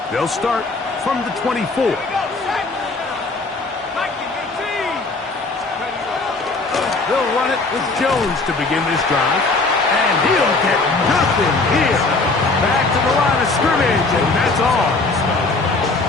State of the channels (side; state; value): right; quieter; 3.5 dB